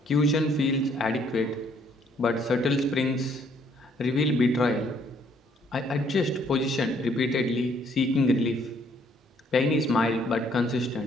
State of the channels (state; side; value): normal; both; correlation 0.65